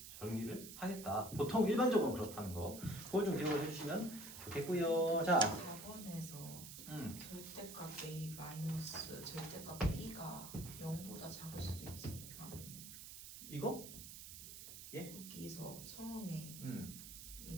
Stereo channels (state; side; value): noise; right; hiss, 11 dB below the sound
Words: 정리를 하겠다. 보통 일반적으로 그렇다는 거. 그걸 좀 기억을 해주시면 좋겠고요. 자, 4번에서 절대값 a 마이너스 절대값 b가 0보다 작을 수도 있지 않나요? 이거? 예? 여기서 처음에